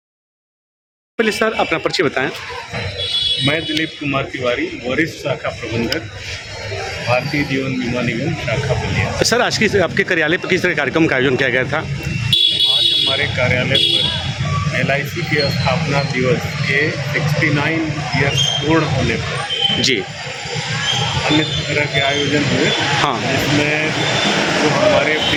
पहले सर अपना परिचय बताएं। मैं दिलीप कुमार तिवारी, वरिष्ठ शाखा प्रबंधक, भारतीय जीवन बीमा निगम शाखा बलिया। सर आज की आपके कार्यालय पर किस तरह कार्यक्रम का आयोजन किया गया था? आज हमारे कार्यालय पर एलआईसी के स्थापना दिवस के 69 ईयर्स पूर्ण होने पर जी अन्य तरह के आयोजन हुए। हाँ। जिसमें जो हमारे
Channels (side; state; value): both; identical; correlation 1.00